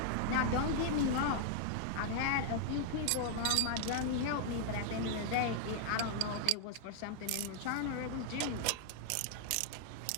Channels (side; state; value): both; different; correlation -0.01